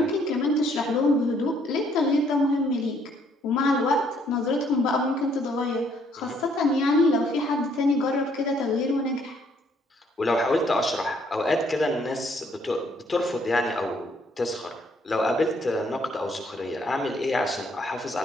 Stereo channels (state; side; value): normal; both; correlation 0.67